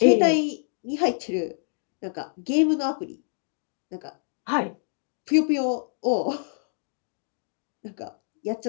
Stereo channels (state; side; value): silent; right; digital silence